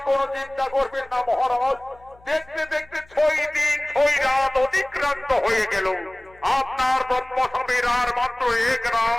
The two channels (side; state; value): left; noise; hum, 27 dB below the sound